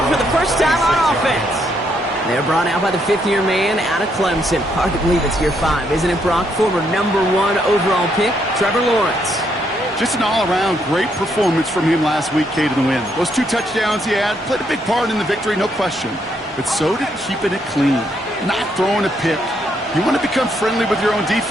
for the first time on offense. They're brought out by the fifth-year man out of Clemson. Hard to believe it's year 5, isn't it, Brock? Former #1 overall pick, Trevor Lawrence. Just an all-around great performance from him last week, Kate, in the win. Those 2 touchdowns he had played a big part in the victory, no question. But so did keeping it clean, not throwing a pick. You want to become friendly with your own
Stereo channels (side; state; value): both; normal; correlation 0.75